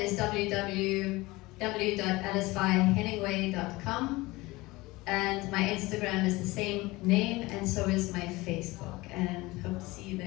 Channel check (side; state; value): right; quieter; 21.1 dB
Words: www.alicevyehenningway.com, and my Instagram is the same name, and so is my Facebook, and hope to see you